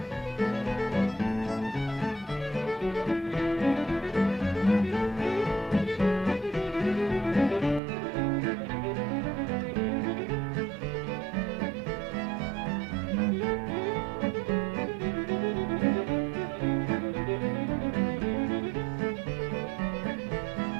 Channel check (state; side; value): drops out; left; at 7.8 s